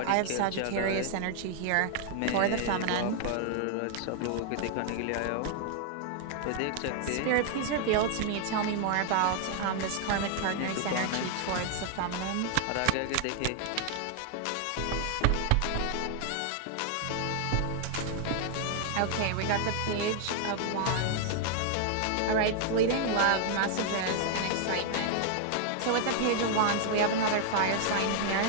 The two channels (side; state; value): both; different; correlation 0.00